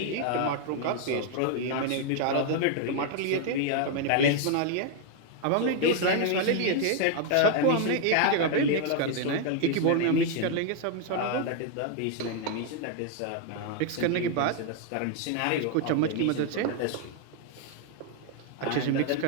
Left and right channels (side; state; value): both; different; correlation 0.00